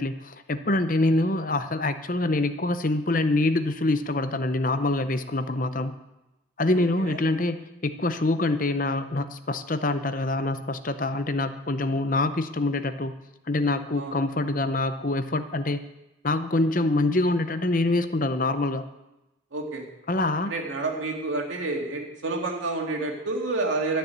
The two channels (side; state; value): both; normal; correlation 0.47